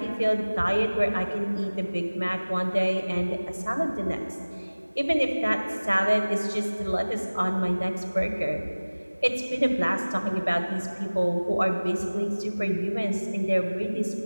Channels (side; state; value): both; inverted; correlation -1.00